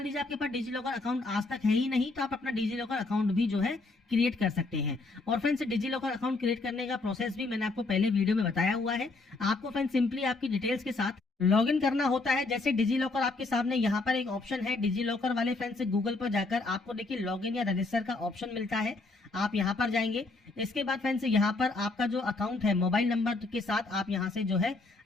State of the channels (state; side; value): quieter; right; 3.4 dB